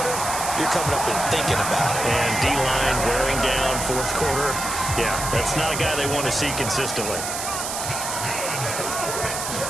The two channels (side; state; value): right; noise; hiss, 4 dB below the sound